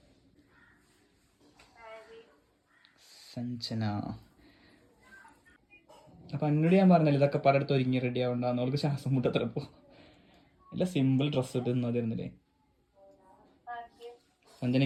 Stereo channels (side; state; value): both; identical; correlation 1.00